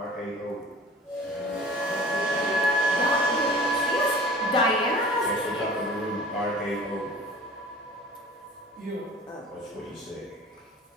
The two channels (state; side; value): normal; both; correlation 0.44